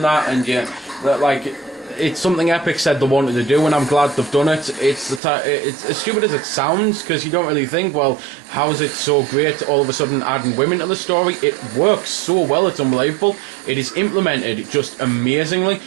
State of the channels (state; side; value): drops out; left; at 5.2 s